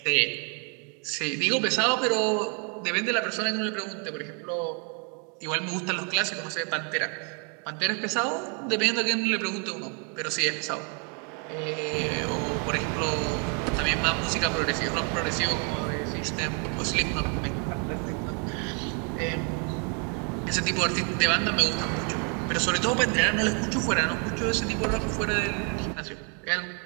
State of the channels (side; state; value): left; quieter; 38.1 dB